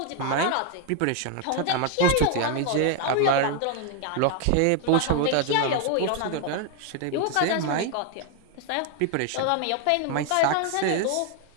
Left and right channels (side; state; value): both; different; correlation 0.01